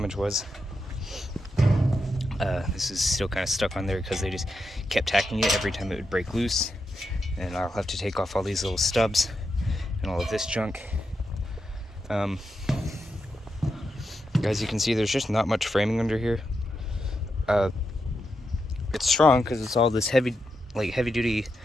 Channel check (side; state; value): both; normal; correlation 0.85